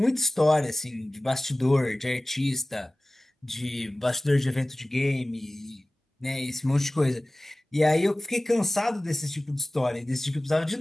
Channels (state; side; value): normal; both; correlation 0.98